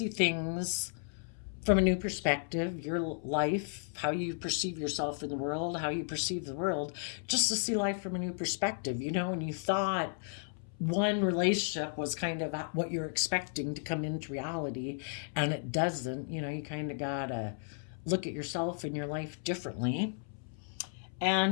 things from a new perspective, your life, how you perceive yourself in the world, how you perceive the world, just to see life from a new perspective. When you thought one relationship was kind of what you're expecting to come into reality, and it doesn't, you kind of gotta look at yourself and your life differently,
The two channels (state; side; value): silent; right; 55 dB below the other